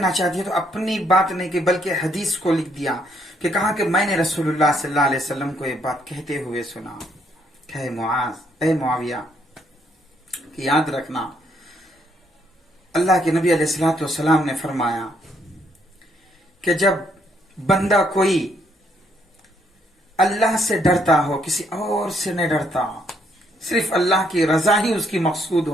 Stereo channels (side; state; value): both; normal; correlation 0.71